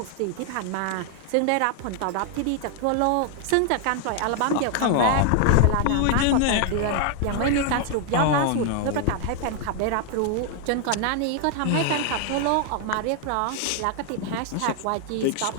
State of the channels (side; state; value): both; different; correlation 0.00